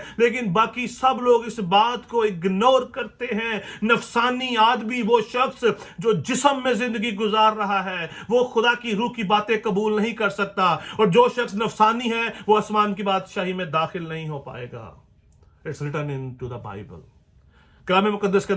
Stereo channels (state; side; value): identical; both; correlation 1.00